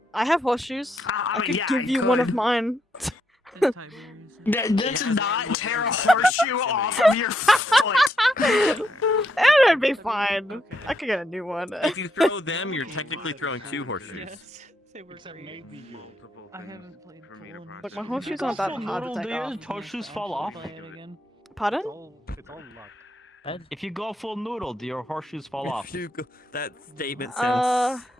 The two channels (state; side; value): normal; both; correlation 0.78